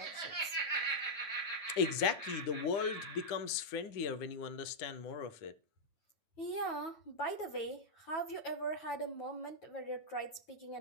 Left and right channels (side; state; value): right; late; 9.2 ms